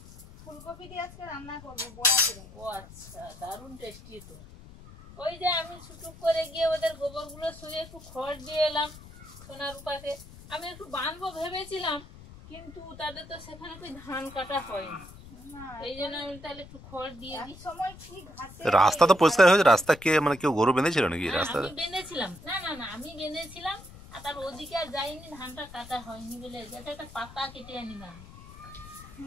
ফুলকপি দিয়ে আজকে রান্না করবো বড়া করে। ও আচ্ছা, দারুণ টেস্টি তো। ওই যে আমি ছুটুক করে গিয়ে ওদের গোবরগুলো শুয়ে একটু খড় দিয়ে এলাম সোনা রূপাকে। আমি একটু বাঁধবো ভেবেছিলাম, কিন্তু তাদের তো সেখানে કોઈ ধান কাটা হয়নি, এই জন্য আমি তাহলে একটু খড় দিয়ে দিই। রাস্তা তো পরিষ্কার হয়েছে। রাস্তা কে মানে কেউ গরু বেঁধেছিল নাকি রাস্তা? আমি বেঁধেছিলাম, না না না আমি বেঁধেছিলাম, আর তার ওদিকে আর যাইনি, ধানটা কাটা হয়নি বলে যেটা একটা পাতা কেটে আনিলাম।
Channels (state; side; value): noise; left; rumble, 18 dB below the sound